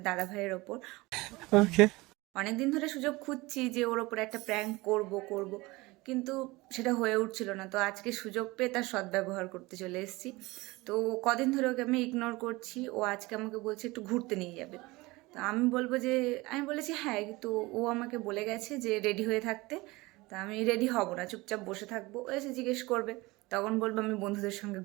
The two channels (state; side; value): quieter; left; 21.9 dB